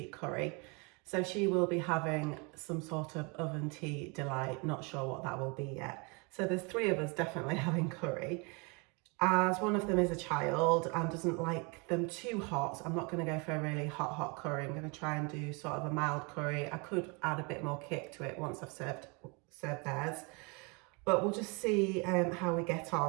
curry. So she will be having some sort of oven tea delight, not sure what that will be yet. So there's 3 of us definitely having curry. As one of them is a child and doesn't like them too hot, so I'm not going to go for a really hot curry. I'm going to try and do sort of a mild curry. I could add a bit more kick to it once I've served theirs. But we'll just see how we get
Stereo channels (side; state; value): left; quieter; 30.8 dB